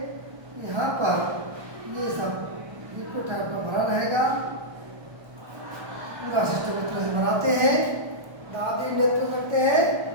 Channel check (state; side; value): late; left; 1.2 ms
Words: यहाँ पर ये सब लिक्विड टाइप का भरा रहेगा। पूरा सिस्टम इस तरह से बनाते हैं। दाबी नेत्र रखते हैं,